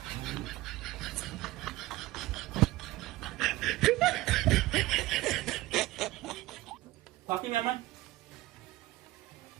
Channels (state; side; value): quieter; left; 18.1 dB